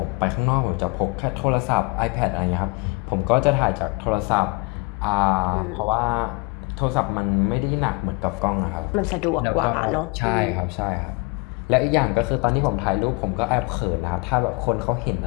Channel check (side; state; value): right; quieter; 28.0 dB